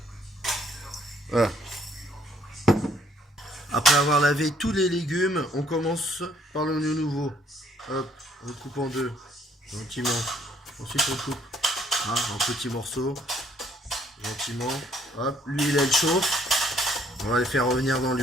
Voilà. Après avoir lavé tous les légumes, on commence par l'oignon nouveau. Hop, on le coupe en deux, gentiment. Ensuite on coupe en petits morceaux, gentiment. Hop, l'huile elle chauffe. On va les faire revenir dans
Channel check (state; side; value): normal; both; correlation 0.65